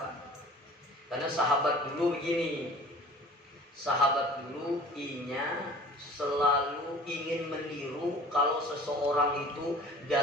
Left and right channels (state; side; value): normal; both; correlation 0.45